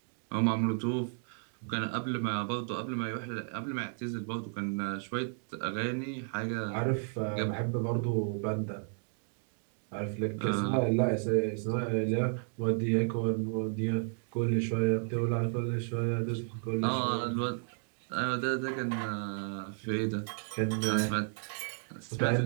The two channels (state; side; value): silent; left; 56 dB below the other